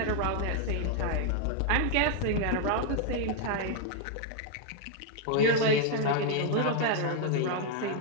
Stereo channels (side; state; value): both; different; correlation 0.00